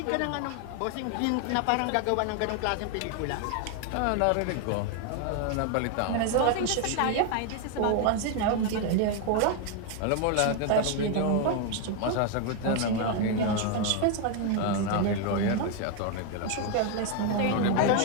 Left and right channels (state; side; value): different; both; correlation 0.01